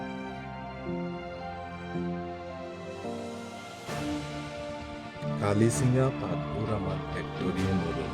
কালি চিঙা পাতবোৰ আমাৰ ফেক্টৰীয়ে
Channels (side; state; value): both; identical; correlation 1.00